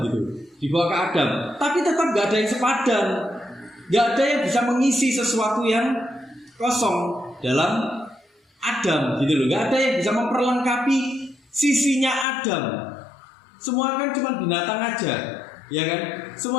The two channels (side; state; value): right; drops out; at 12.2 s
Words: gitu, dibawa ke Adam. Tapi tetap gak ada yang sepadan. Nggak ada yang bisa mengisi sesuatu yang kosong dalam Adam gitu loh. Nggak ada yang bisa memperlengkapi sisinya Adam. Semua kan cuma binatang aja, ya kan?